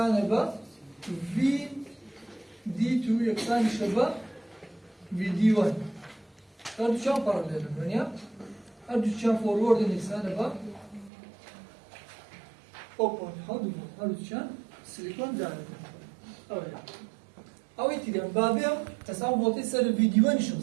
با في دي 2 يكسر شبا في دي 1 هذا شان باراليل يعني هذا شان فورورد يكسر با او بوينت حاول هذا شان سيليكون داري أو يتدين بابيا تساوي فولتي سر الفيديو نشوف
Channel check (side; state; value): left; drops out; at 11.1 s